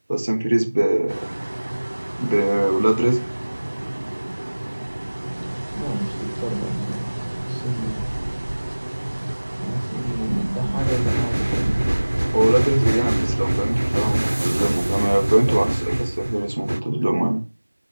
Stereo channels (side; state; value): both; inverted; correlation -1.00